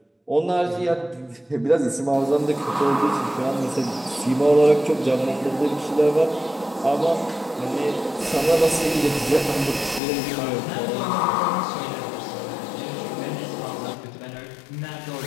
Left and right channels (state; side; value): drops out; right; at 10.0 s